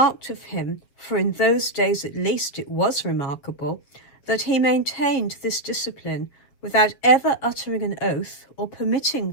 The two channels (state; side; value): late; right; 7.4 ms